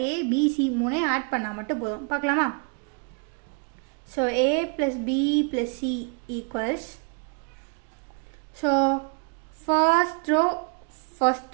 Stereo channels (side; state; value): left; quieter; 37.5 dB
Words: a b c 3ஐயும் ஆட் பண்ணால் மட்டும் போதும். பார்க்கலாமா? So a + b + c equals, so first